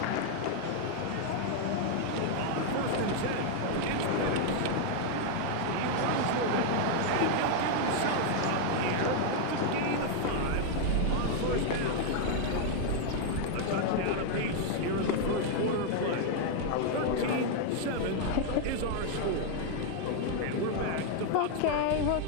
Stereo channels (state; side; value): different; both; correlation 0.00